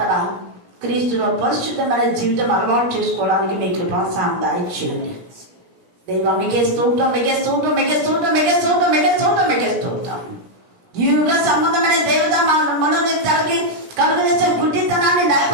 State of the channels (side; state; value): left; late; 17 ms